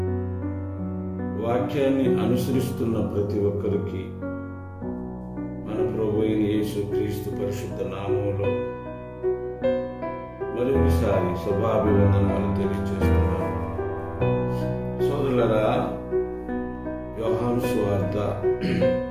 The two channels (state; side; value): identical; both; correlation 1.00